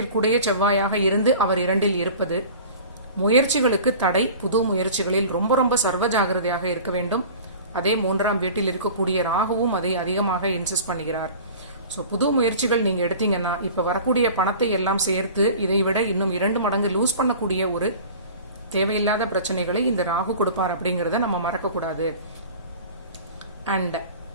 செவ்வாயாக இருந்து அவர் 2இல் இருப்பது முயற்சிகளுக்கு தடை. புது முயற்சிகளில் ரொம்ப ரொம்ப சர்வ ஜாகிரதையாக இருக்க வேண்டும். அதே 3ஆம் வீட்டில் இருக்கக்கூடிய ராகுவும் அதை அதிகமாக இன்சிஸ்ட் பண்ணுகிறார். ஸோ புது முயற்சிகள் நீங்க எடுத்தீங்கன்னா இப்ப வரக்கூடிய பணத்தை எல்லாம் சேர்த்து இதை விட இன்னும் 2 மடங்கு லூஸ் பண்ணக்கூடிய ஒரு தேவையில்லாத பிரச்சனைகளை இந்த ராகு கொடுப்பார் அப்படிங்கறத நம்ம மறக்கக்கூடாது. அண்ட்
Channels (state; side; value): inverted; both; correlation -0.41